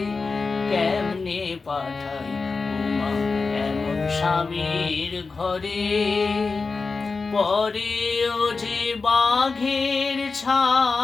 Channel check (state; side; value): quieter; right; 4.3 dB